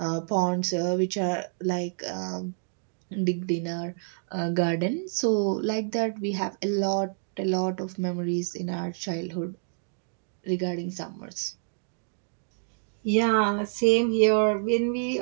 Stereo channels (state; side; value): silent; left; digital silence